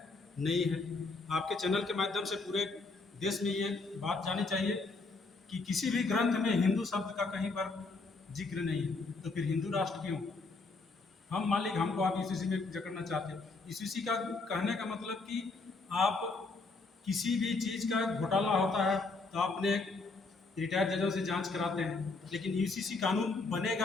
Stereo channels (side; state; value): right; quieter; 3.7 dB